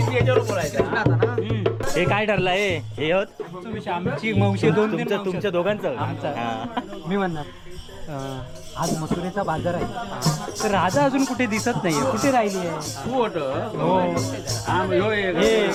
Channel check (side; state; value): both; identical; correlation 1.00